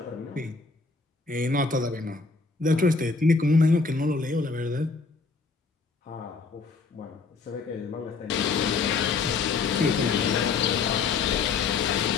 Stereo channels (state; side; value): quieter; right; 4.4 dB